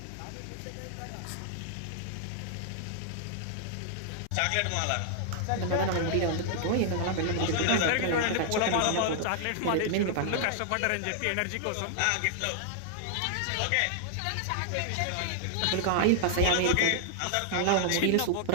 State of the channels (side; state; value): both; different; correlation 0.00